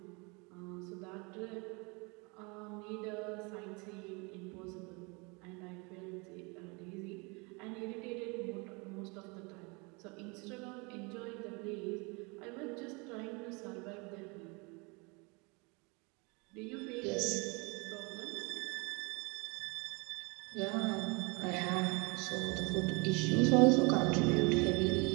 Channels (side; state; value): left; quieter; 29.4 dB